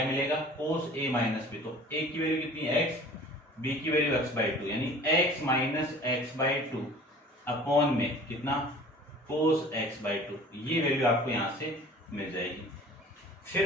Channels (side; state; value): both; normal; correlation 0.46